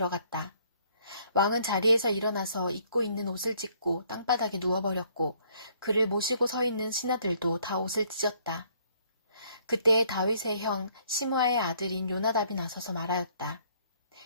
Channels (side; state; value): both; inverted; correlation -0.64